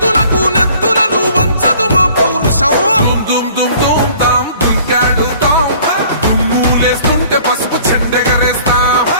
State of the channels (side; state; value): both; inverted; correlation -0.53